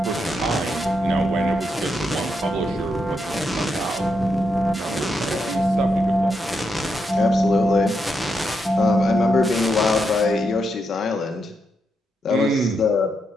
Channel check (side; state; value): both; normal; correlation 0.82